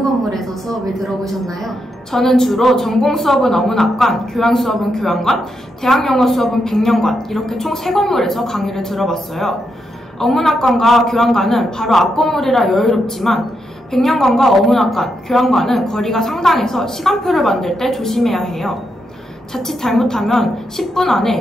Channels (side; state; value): both; normal; correlation 0.83